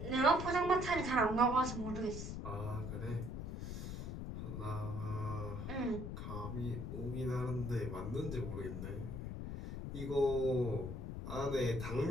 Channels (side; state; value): left; noise; rumble, 5 dB below the sound